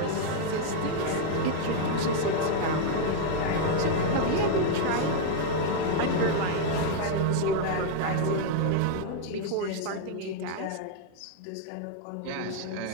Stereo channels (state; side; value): different; both; correlation 0.00